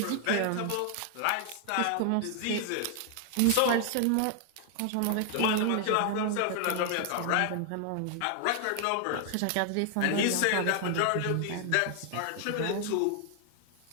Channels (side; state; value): both; different; correlation 0.00